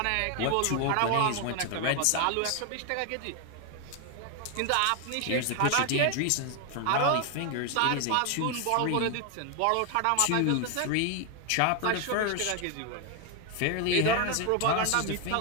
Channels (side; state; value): both; different; correlation 0.01